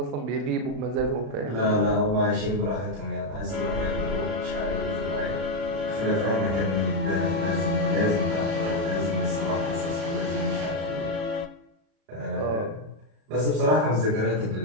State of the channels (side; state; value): left; late; 36 ms